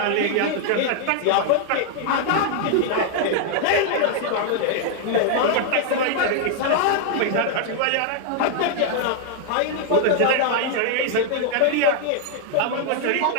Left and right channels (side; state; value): both; different; correlation 0.00